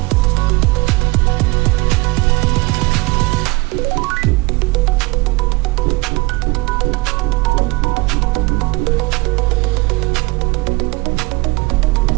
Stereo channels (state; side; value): quieter; left; 24.7 dB